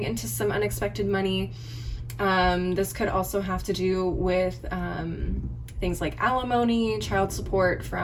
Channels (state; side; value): identical; both; correlation 1.00